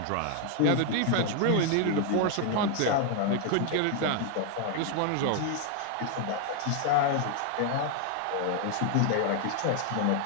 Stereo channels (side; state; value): both; different; correlation 0.00